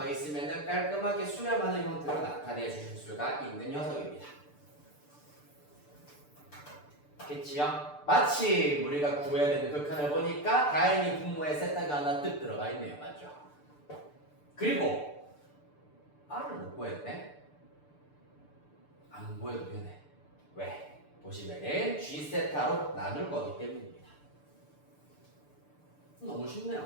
있으면 깔끔하게 수렴하는 형태로 나타내 주실 수가 있는 녀석입니다. 겠지요? 마침 우리가 구해야 되는 극한을 보니까 다행히 분모에 세타가 하나 뜩 들어가 있네요. 맞죠? 그리고 R을 못 구했네? 안 구해도 되네. 왜? 보시면은 G세타로 나눌 거기 때문입니다. 너무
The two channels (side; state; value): right; late; 6.8 ms